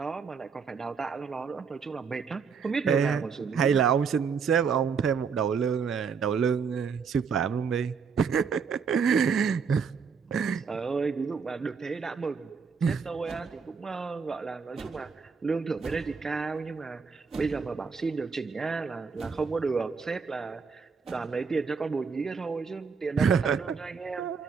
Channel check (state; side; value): quieter; left; 5.8 dB